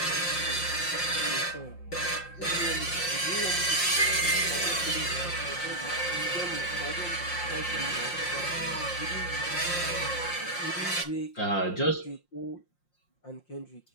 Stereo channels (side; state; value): right; late; 5.7 ms